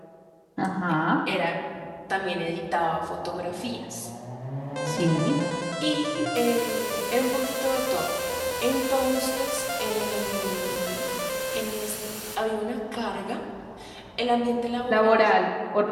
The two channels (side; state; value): both; identical; correlation 1.00